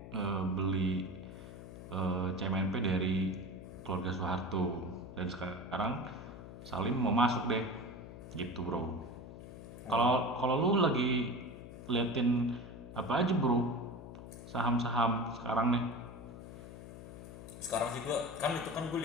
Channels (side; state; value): left; noise; hum, 13 dB below the sound